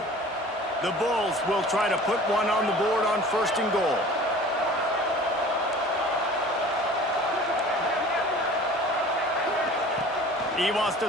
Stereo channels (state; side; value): normal; both; correlation 0.44